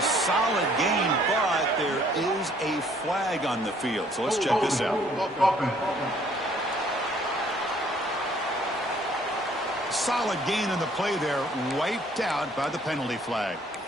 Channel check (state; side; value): normal; both; correlation 0.61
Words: solid game, but there is a flag on the field. So let's check this out. Solid gain in the play there, wiped out by the penalty flag.